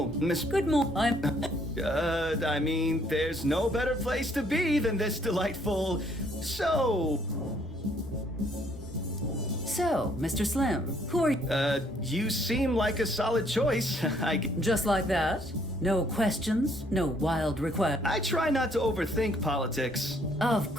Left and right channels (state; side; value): normal; both; correlation 0.66